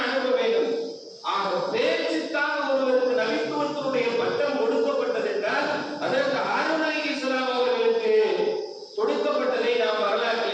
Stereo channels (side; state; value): both; identical; correlation 1.00